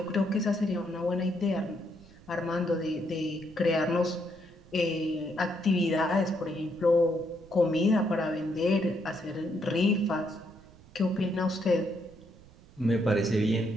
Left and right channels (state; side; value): noise; right; rumble, 23 dB below the sound